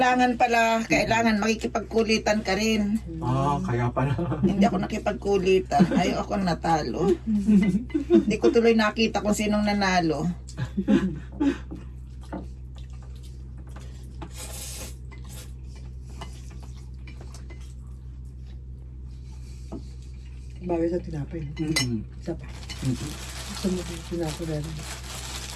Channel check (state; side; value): identical; both; correlation 1.00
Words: makikipagkulitan ka rin. Kaya pala. Hindi ako nakipagkulitan. Ayaw ako natalo. Hindi ko tuloy nakita kung sinong nanalo. Bagay sa tinapay. Isa pa. Gusto mo yung tinapay na rin.